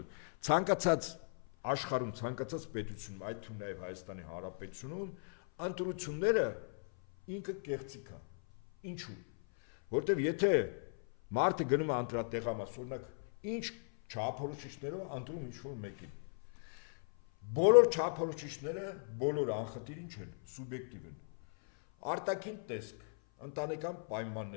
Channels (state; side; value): silent; right; 53 dB below the other